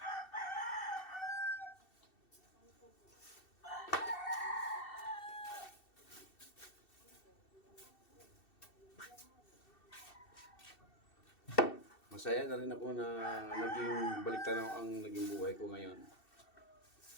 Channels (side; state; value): right; late; 2.7 ms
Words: Masaya na rin ako na naging baliktanaw ang naging buhay ko ngayon.